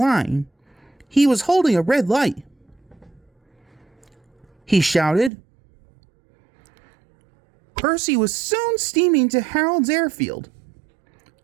He was holding a red light. He shouted. Percy was soon steaming to Harold's airfield.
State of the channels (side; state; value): left; drops out; at 5.3 s